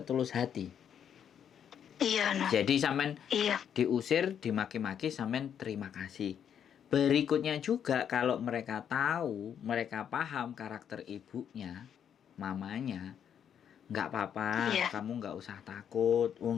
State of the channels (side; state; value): right; quieter; 8.6 dB